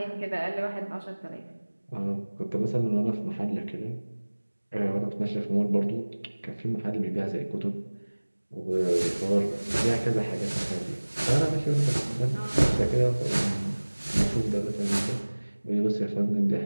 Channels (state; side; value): inverted; both; correlation -1.00